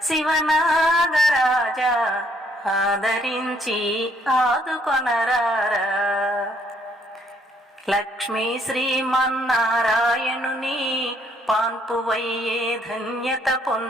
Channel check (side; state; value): both; normal; correlation 0.68